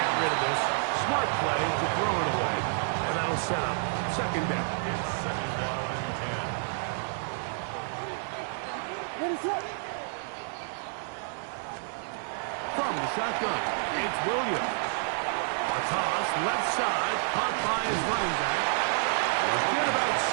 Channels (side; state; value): left; silent; 58 dB below the other